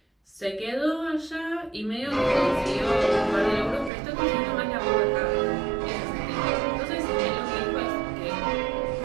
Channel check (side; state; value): left; drops out; at 3.9 s